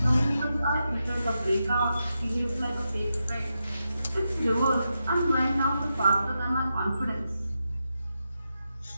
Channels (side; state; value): both; inverted; correlation -0.87